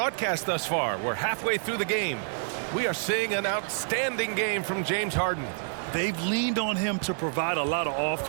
thus far. We're halfway through the game. We are seeing an outstanding game from James Harden. They've leaned on him to provide a lot of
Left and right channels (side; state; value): left; silent; 59 dB below the other